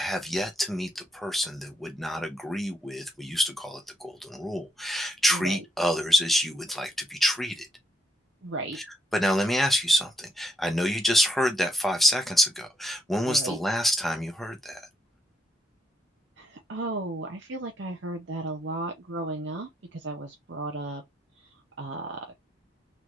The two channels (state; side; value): normal; both; correlation 0.76